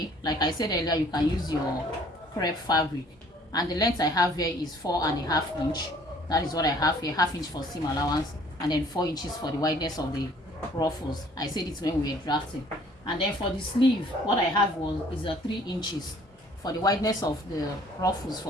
like I said earlier, you can use your crepe fabric, and the length I have here is 4.5 inch. That is what I have here, half inch for seam allowance, and then 4 inches for the wideness of the ruffles. I said it when we were drafting. And then for the sleeve, what I have is 3 inches for the wideness of the ruffles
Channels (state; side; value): normal; both; correlation 0.57